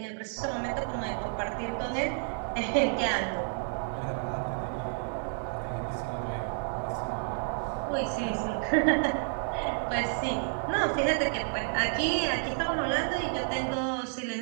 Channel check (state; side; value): silent; left; 58 dB below the other